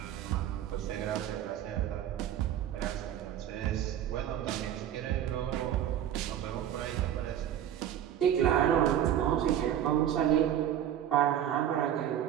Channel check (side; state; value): left; quieter; 10.6 dB